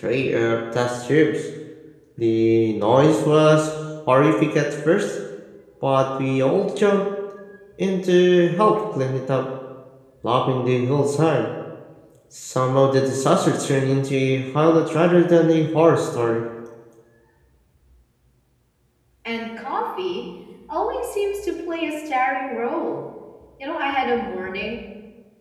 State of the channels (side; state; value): both; identical; correlation 1.00